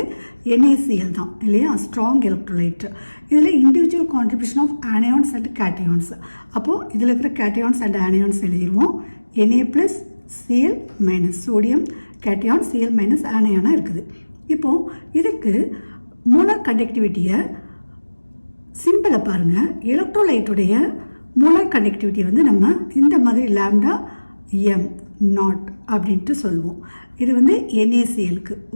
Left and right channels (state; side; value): inverted; both; correlation -1.00